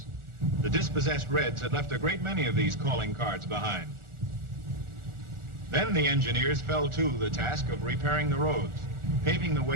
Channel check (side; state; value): left; late; 1.4 ms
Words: The dispossessed Reds had left a great many of these calling cards behind. Then the engineers fell to the task of repairing the roads, paving the